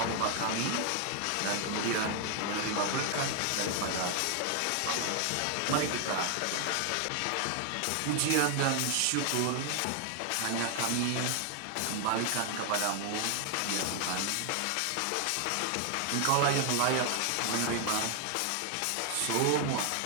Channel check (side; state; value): both; different; correlation 0.00